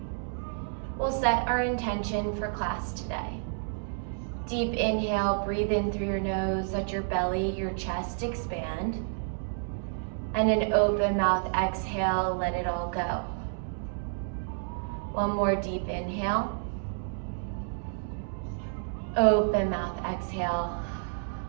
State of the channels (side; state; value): left; silent; digital silence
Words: We'll set our intention for class today. Deep inhale, breathe in through your nose, let your belly, your chest expand. And an open mouth exhale, let it all go. One more deep inhale. Open mouth exhale.